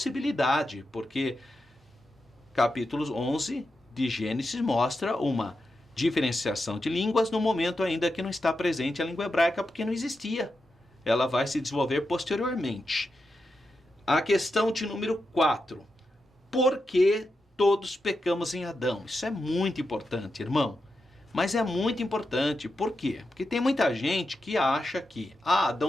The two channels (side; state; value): both; normal; correlation 0.88